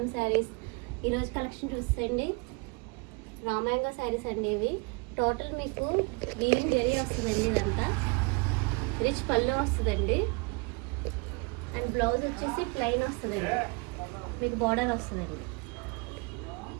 saris. ఈరోజు collection చూసేయండి. Raw mango saris అండి. ఇవి టోటల్ మీకు వీవింగ్ జరీ వస్తుందండి. ఇదంతా రిచ్ పళ్ళు వస్తుందండి. అండ్ బ్లౌజ్ వచ్చేసి ప్లెయిన్ వస్తుందండి. మీకు బార్డర్ వస్తుందండి.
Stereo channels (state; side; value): quieter; left; 30.4 dB